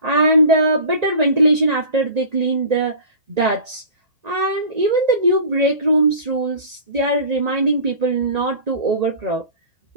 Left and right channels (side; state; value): left; late; 1.9 ms